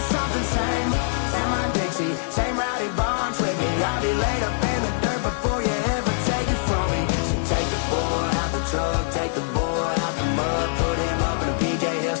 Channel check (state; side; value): silent; right; digital silence